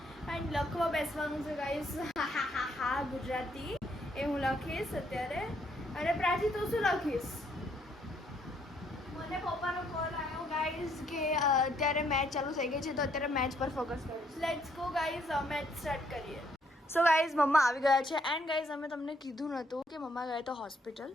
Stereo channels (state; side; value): normal; both; correlation 0.70